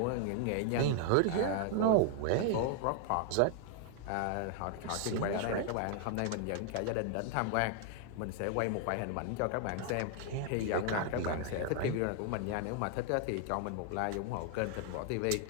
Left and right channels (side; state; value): both; different; correlation 0.00